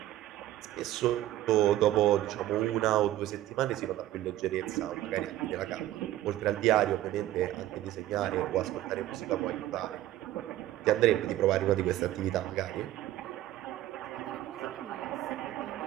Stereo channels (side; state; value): left; quieter; 14.2 dB